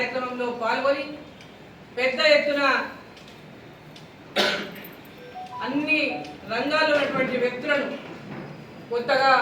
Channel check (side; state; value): both; identical; correlation 1.00